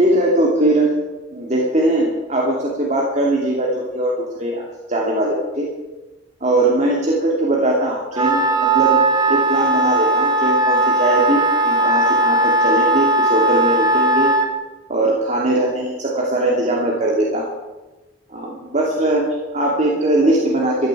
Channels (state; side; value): normal; both; correlation 0.12